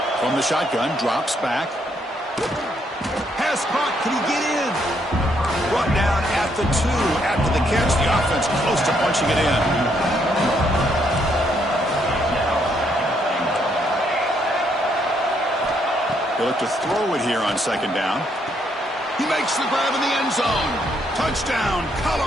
From the shotgun, drops back. Pass caught. Can he get in? Brought down at the 2 after the catch. The offense close to punching it in. He'll look to throw it here on 2nd down. He makes the grab in the end zone. Touchdown,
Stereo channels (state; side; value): normal; both; correlation 0.73